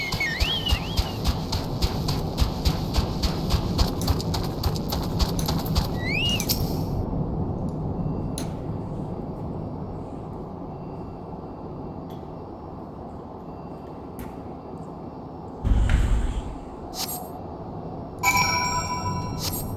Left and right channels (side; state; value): both; identical; correlation 1.00